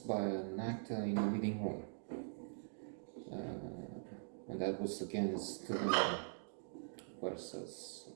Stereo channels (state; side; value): silent; left; digital silence